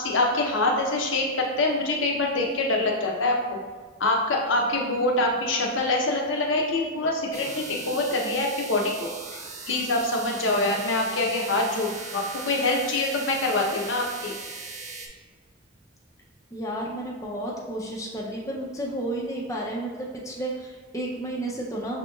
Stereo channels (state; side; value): normal; both; correlation -0.08